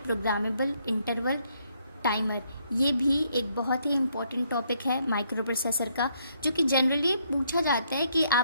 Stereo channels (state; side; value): inverted; both; correlation -0.72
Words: प्रोग्रामेबल इंटरवल टाइमर, ये भी एक बहुत ही इम्पोर्टेंट टॉपिक है माइक्रो प्रोसेसर का, जो कि जनरली पूछा जाता है कि